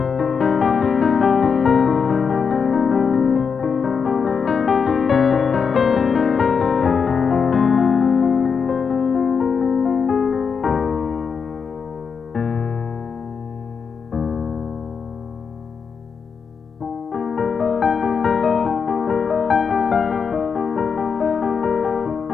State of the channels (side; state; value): right; quieter; 6.0 dB